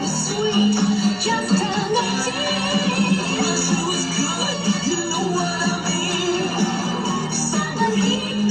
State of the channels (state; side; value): identical; both; correlation 1.00